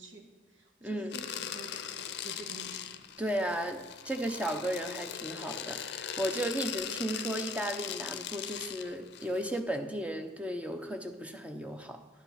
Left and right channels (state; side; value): normal; both; correlation 0.59